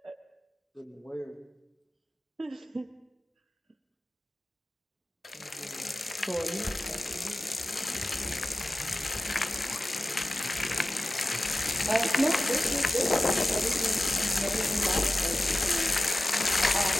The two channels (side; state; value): both; normal; correlation 0.94